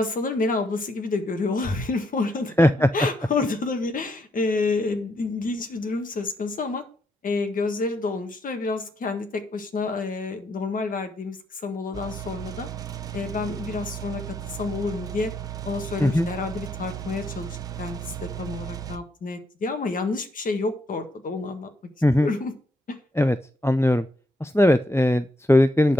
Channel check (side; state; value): both; normal; correlation 0.76